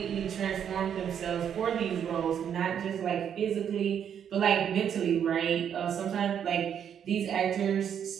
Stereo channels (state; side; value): quieter; left; 8.6 dB